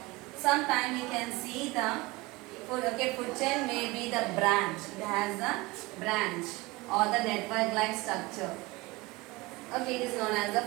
sometime we can see the food. Okay, food chain may be the branch. It has the branch or the network like structure. Okay, it is known as the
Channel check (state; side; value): quieter; left; 22.0 dB